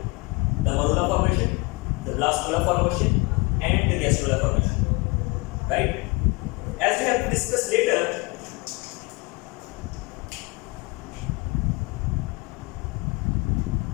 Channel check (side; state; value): right; quieter; 26.6 dB